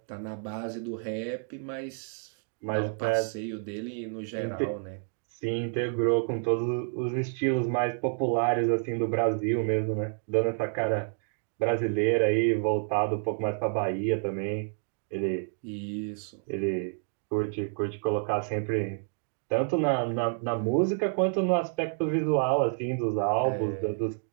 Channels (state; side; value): silent; left; 58 dB below the other